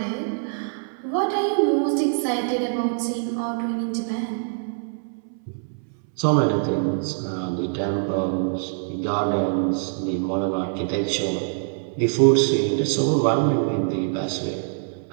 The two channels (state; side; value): silent; left; 63 dB below the other